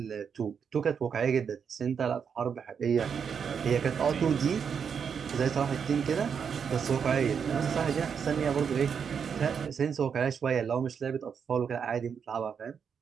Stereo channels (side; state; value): left; quieter; 6.9 dB